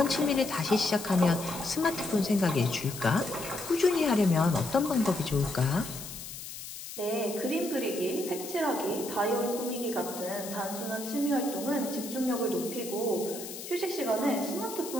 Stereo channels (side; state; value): left; noise; hiss, 10 dB below the sound